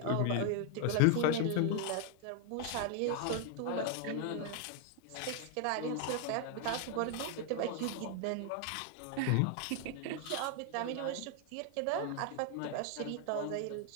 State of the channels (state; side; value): different; both; correlation 0.00